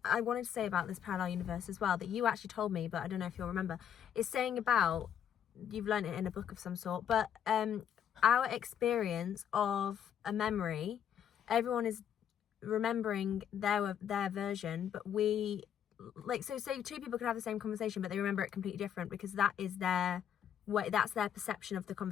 I wanted to say about this parallel universe as well that you actually told me, but I don't know if you'll remember, is saying about, you've learned it in a book of some sort, but our experience of a memory, everyone is remembering their version, but we, like, so say two people could have the same conversation, but they remember it completely different because that is their that's their perception of the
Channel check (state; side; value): quieter; right; 9.1 dB